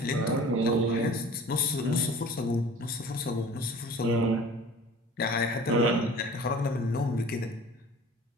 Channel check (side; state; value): both; normal; correlation 0.44